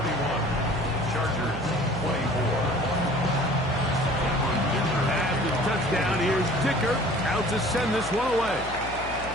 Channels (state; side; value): noise; left; hum, 13 dB below the sound